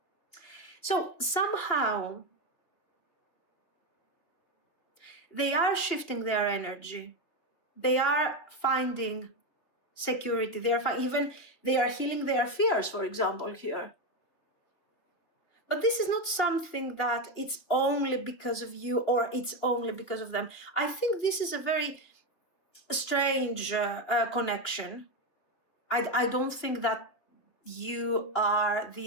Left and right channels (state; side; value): late; right; 3.2 ms